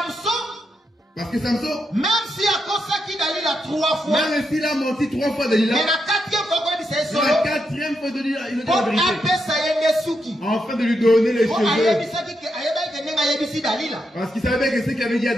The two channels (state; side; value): normal; both; correlation 0.83